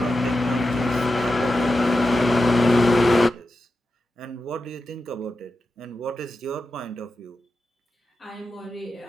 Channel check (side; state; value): both; normal; correlation 0.90